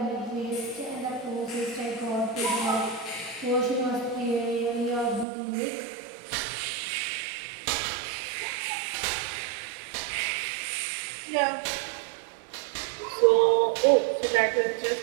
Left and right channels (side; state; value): left; drops out; at 5.2 s